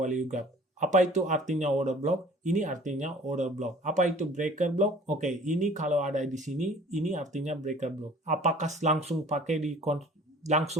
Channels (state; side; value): normal; both; correlation 0.49